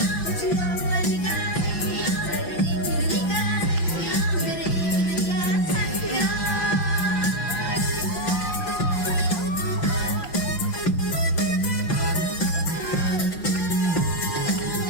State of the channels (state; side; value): late; right; 5.8 ms